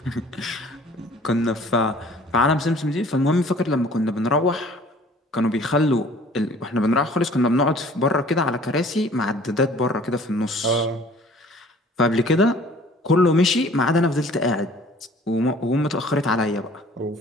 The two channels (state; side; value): normal; both; correlation 0.52